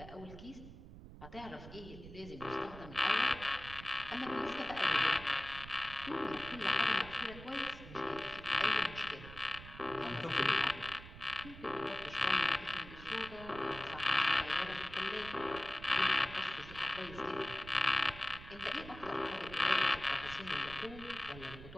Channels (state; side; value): noise; right; rumble, 14 dB below the sound